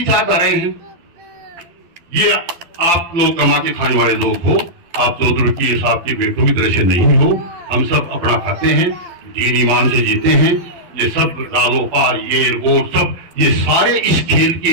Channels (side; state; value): left; late; 11 ms